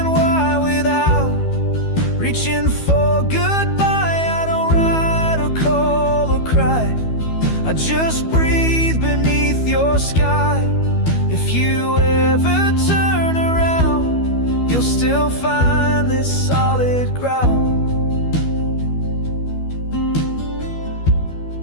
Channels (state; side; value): late; right; 12 ms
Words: why, without reaching for goodbye. I don't write or call or cry, I just breathe beneath your sky. If you ever turn around, you'll still find this solid ground.